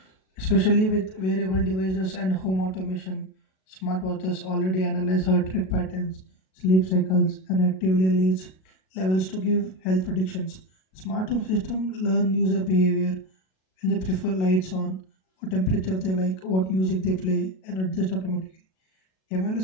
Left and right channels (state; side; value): late; right; 37 ms